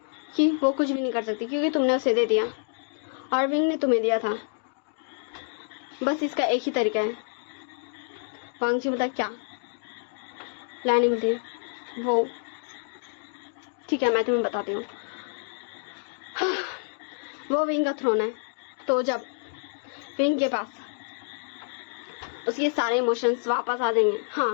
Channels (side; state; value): right; silent; 59 dB below the other